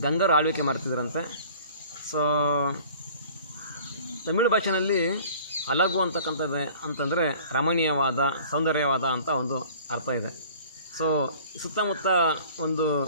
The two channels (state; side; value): inverted; both; correlation -0.48